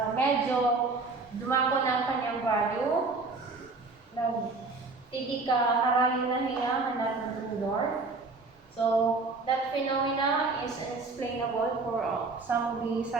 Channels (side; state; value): left; quieter; 3.8 dB